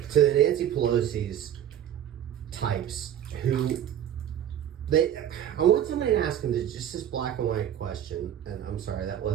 To the Nancy Pelosi's types who I want somebody to ask them just this black and white question, and I'm sorry, that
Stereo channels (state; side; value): quieter; left; 10.4 dB